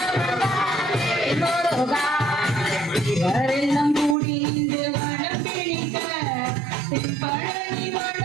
வேல் முருகா இவரெல்லாம் கூடி இன்று வனம் பிடிக்க பழனி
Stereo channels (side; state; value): left; drops out; at 4.2 s